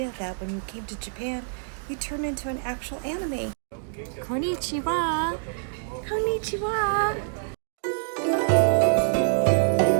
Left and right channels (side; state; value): left; silent; digital silence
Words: that when you came to Japan, you turned into an actual anime. Konnichiwa! Konnichiwa!